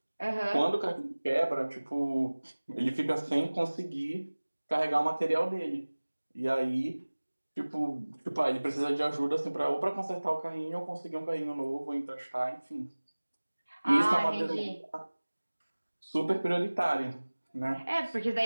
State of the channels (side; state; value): both; inverted; correlation -1.00